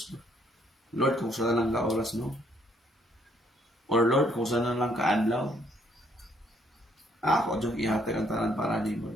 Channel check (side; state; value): both; normal; correlation 0.68